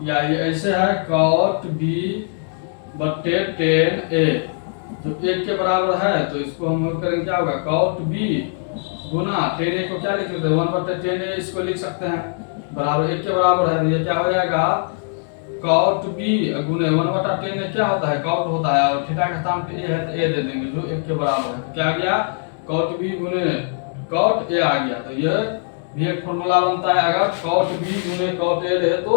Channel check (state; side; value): silent; right; 65 dB below the other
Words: या ये ऐसे है कॉट बी बट्टे टेन ए जो 1 के बराबर है, तो इसको हम करेंगे क्या होगा, कॉट बी गुना टेन ए को क्या लिख सकते हैं, 1 बट्टे टेन ए इसको लिख सकते हैं, बराबर 1 के बराबर है, तो ये क्या हो जाएगा, कॉट बी गुने 1 बटा टेन ए क्या होता है, कॉट होता है, और थीटा का स्थान पे ए है तो ए दे देंगे जो 1 के बराबर है। तो क्या आ गया, कॉट बी गुने कॉट ए आ गया। तो ये भी एक फॉर्मूला बनता है, अगर कॉट बी गुने कॉट ए रहे